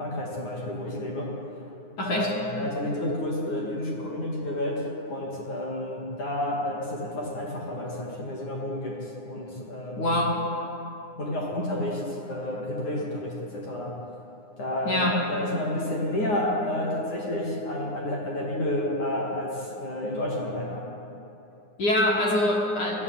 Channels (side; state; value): right; late; 9.7 ms